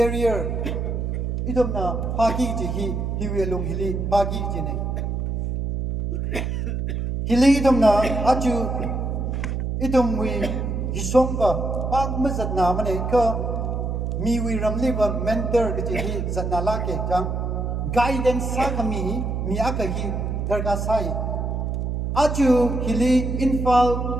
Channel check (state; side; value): noise; right; hum, 2 dB below the sound